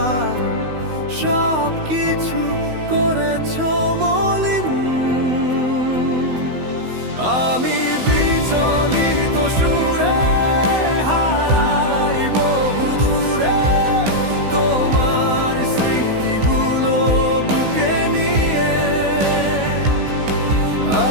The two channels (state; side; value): late; left; 16 ms